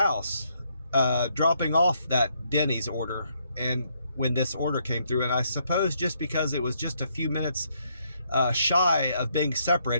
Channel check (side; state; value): both; inverted; correlation -0.74